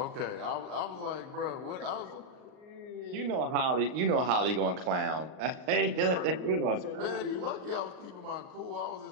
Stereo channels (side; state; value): left; late; 39 ms